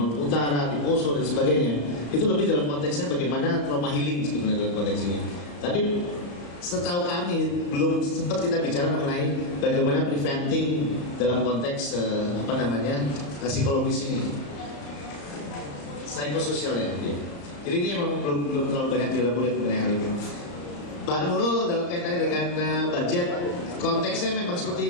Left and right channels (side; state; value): right; late; 34 ms